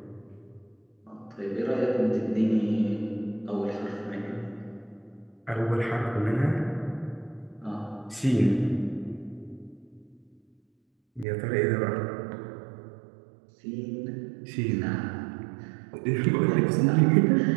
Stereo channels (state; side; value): drops out; left; at 11.2 s